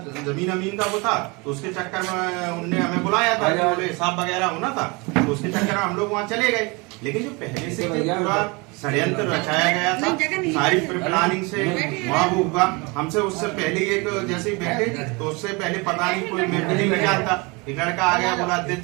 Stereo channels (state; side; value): quieter; left; 27.6 dB